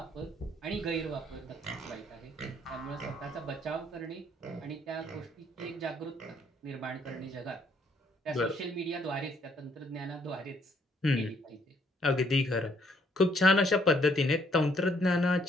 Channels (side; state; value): both; normal; correlation 0.67